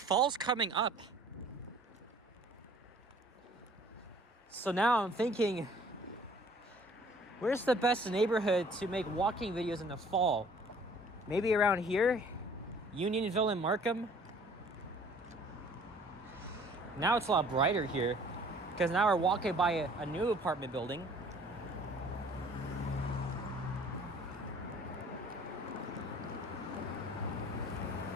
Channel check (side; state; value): both; normal; correlation 0.53